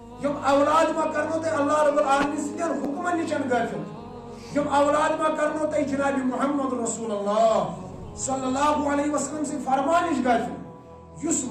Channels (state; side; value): identical; both; correlation 1.00